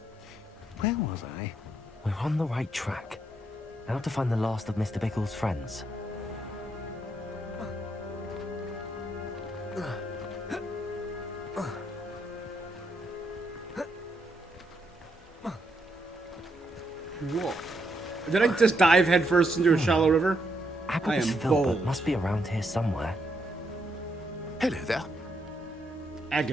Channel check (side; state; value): both; normal; correlation 0.77